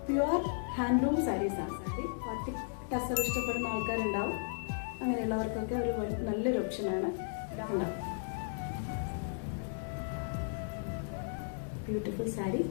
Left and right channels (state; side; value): silent; right; digital silence